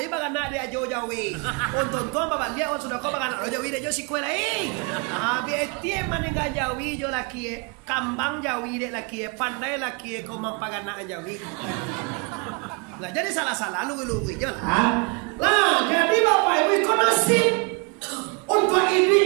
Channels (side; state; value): left; quieter; 31.8 dB